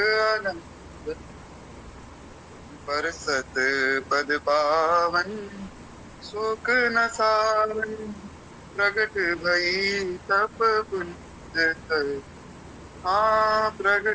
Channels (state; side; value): identical; both; correlation 1.00